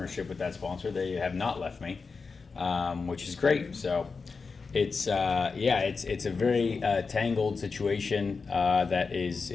with that sponsor. They have not left me, which is great. So it's it's a very tangled situation that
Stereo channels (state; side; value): quieter; right; 4.7 dB